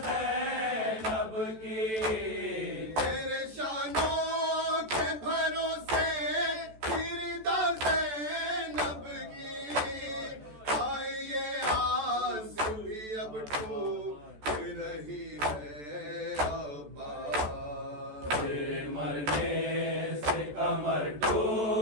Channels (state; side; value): late; left; 14 ms